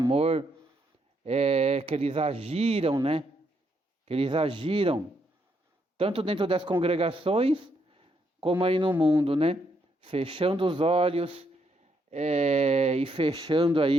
que eles agiram, né? Que eles agiram, tanto dentro das congregações, como aí no mundo, né? Fechando os olhos e fechando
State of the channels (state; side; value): normal; both; correlation 0.76